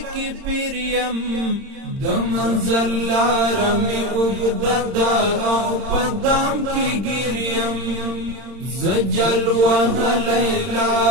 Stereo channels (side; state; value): left; late; 31 ms